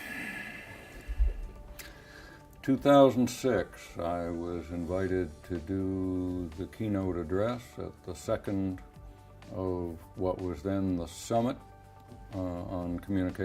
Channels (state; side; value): identical; both; correlation 1.00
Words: 2006, I was invited to do the keynote address at the second of what was then the Summit on